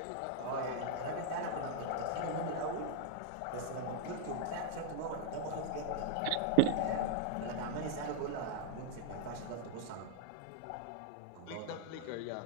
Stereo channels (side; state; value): both; different; correlation 0.00